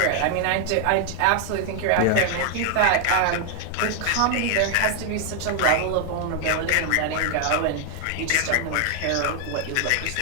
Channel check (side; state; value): both; different; correlation 0.00